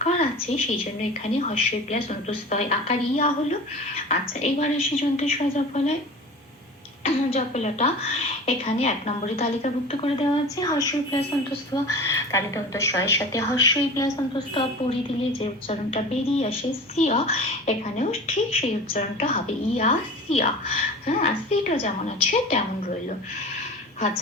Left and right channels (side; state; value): both; normal; correlation 0.36